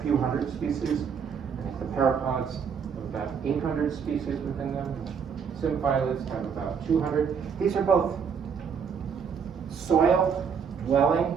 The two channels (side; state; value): left; quieter; 6.7 dB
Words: few hundred species. I think the parapods have about 800 species within them. Symphylas have about 200. These are both